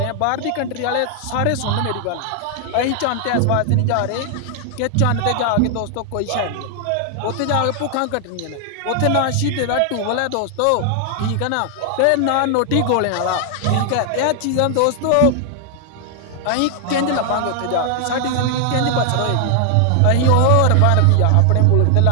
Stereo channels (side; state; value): both; different; correlation 0.00